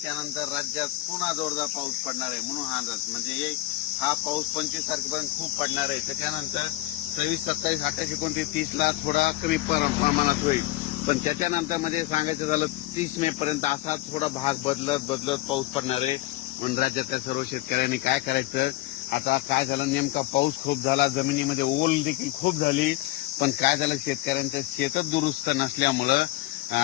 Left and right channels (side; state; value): right; quieter; 17.7 dB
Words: नंतर राज्यात पुन्हा जोरदार पाऊस पडणार आहे म्हणून हा अंदाज. म्हणजे हा पाऊस 25 तारखेपर्यंत खूप पडणार आहे. त्याच्यानंतर 26, 27, 28, 29, 30ला थोडा कमी प्रमाणात होईल. पण त्याच्यानंतर मध्ये सांगायचं झालं 30 मे पर्यंत असा थोडा भाग बदलत पाऊस पडणार आहे. म्हणून राज्यातल्या सर्व शेतकऱ्यांनी काय करायचं, आता काय झालं, नेमका पाऊस खूप झाला, जमिनीमध्ये ओल देखील खूप झाली, पण काय झालं, शेतकऱ्यांचं शेतच दुरुस्त नसल्यामुळं